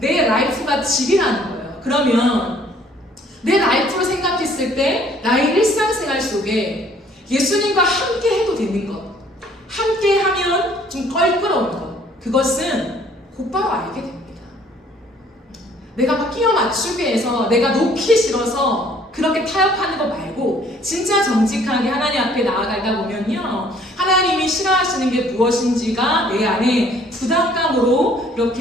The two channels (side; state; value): both; normal; correlation 0.59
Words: 라이프가 집이라는 거예요. 그러면 내 라이프로 생각했을 때 나의 일상생활 속에 예수님과 함께 해도 되는 것, 함께 하면 좀 껄끄러운 것, 그것은 곧바로 알게 됩니다. 내가 막 끼워 맞추기 해서 내가 놓기 싫어서 그렇게 타협하는 거 말고 진짜 정직하게 하나님 앞에 나아가다 보면요, 하나님이 싫어하시는 게 무엇인지가 내 안에 부담감으로